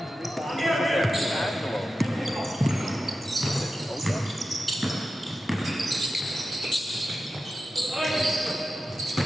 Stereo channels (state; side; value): normal; both; correlation 0.92